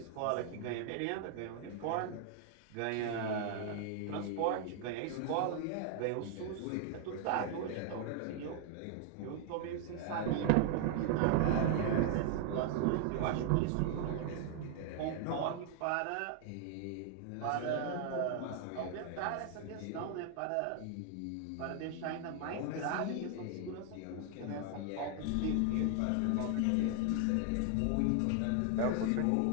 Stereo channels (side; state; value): both; different; correlation 0.00